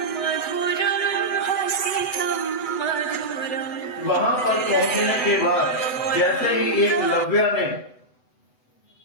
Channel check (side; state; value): right; late; 8.0 ms